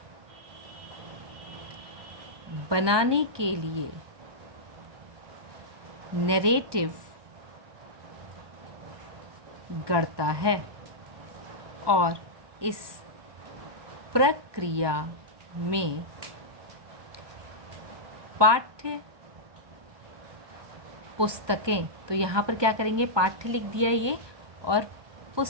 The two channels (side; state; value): left; late; 1.2 ms